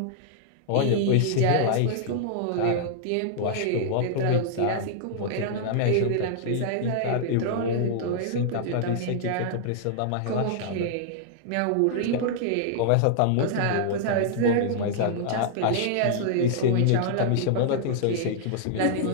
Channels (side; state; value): both; different; correlation -0.01